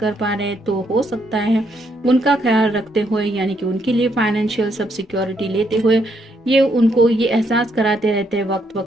पा रहे हैं तो हो सकता है उनका ख्याल रखते हुए, यानी कि उनके लिए फाइनेंशियल सब सिक्योरिटी लेते हुए ये उनको ये एहसास कराते रहते हैं वक्त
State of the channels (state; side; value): normal; both; correlation 0.74